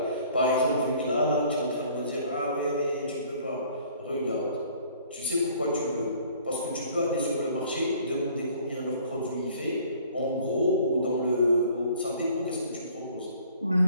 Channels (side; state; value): both; inverted; correlation -0.55